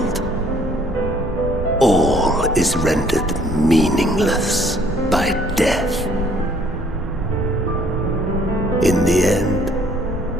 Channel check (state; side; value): normal; both; correlation 0.61